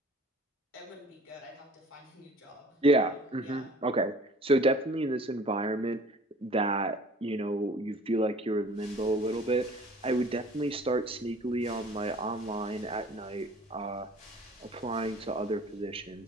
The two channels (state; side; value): normal; both; correlation 0.49